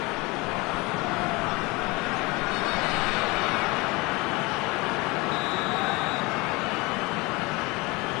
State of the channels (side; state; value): right; quieter; 24.5 dB